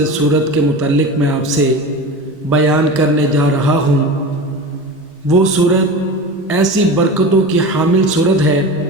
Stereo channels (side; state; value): both; normal; correlation 0.30